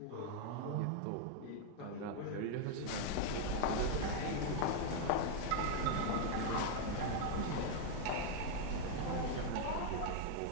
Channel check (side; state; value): both; different; correlation 0.00